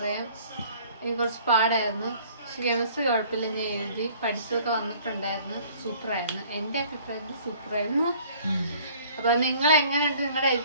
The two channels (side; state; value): both; inverted; correlation -0.53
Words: എനിക്ക് കുറച്ച് പാടായിരുന്നു. പക്ഷെ കെമിസ്ട്രി കുഴപ്പമില്ല, ഞാൻ എഴുതി, പഠിച്ചതൊക്കെ വന്നിട്ടുണ്ടായിരുന്നു. സൂപ്പറായിരുന്നു, എൻ്റെ അഭിപ്രായത്തിൽ സൂപ്പറായിരുന്നു. അപ്പോൾ നിങ്ങൾ എങ്ങനെയുണ്ട് നിങ്ങളുടെ